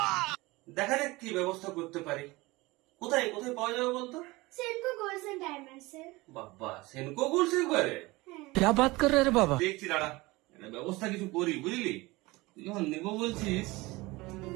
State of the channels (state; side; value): quieter; left; 21.7 dB